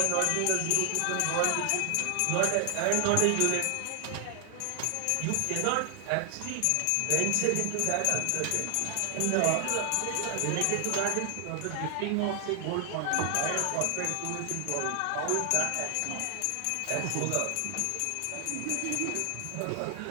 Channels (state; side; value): different; both; correlation 0.00